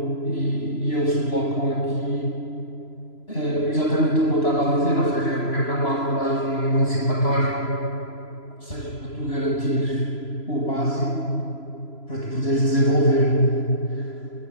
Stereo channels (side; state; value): right; late; 3.0 ms